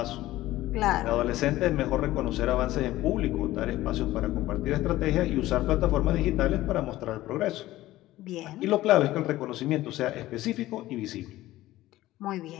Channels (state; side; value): quieter; right; 16.1 dB